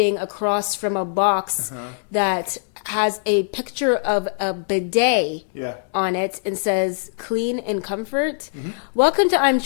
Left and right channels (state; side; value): silent; right; digital silence